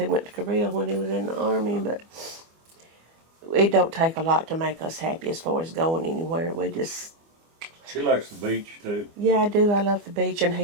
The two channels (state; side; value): late; left; 24 ms